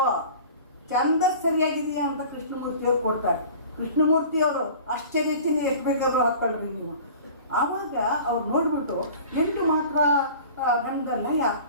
ಚಂದ ಸರಿಯಾಗಿದೆಯಾ ಅಂತ ಕೃಷ್ಣಮೂರ್ತಿಯವರು ಕೊಡ್ತಾರೆ. ಕೃಷ್ಣಮೂರ್ತಿಯವರು ಆಶ್ಚರ್ಯಚಿನ ಎಷ್ಟು ಬೇಕಾದ್ರೂ ಹಾಕ್ಕೊಳ್ರಿ ನೀವು. ಆವಾಗ ಅವ್ರು ನೋಡ್ಬಿಟ್ಟು 8 ಮಾತ್ರ ಗಂಧದ ಲಯ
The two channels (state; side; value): inverted; both; correlation -0.43